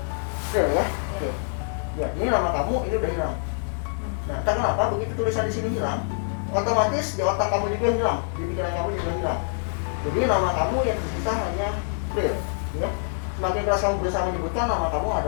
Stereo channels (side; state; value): right; silent; 61 dB below the other